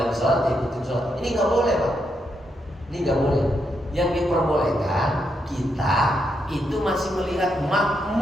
sholat, diikutin sholat. Ini nggak boleh Pak, ini nggak boleh. Yang diperbolehkan kita itu masih melihat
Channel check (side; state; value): both; normal; correlation 0.81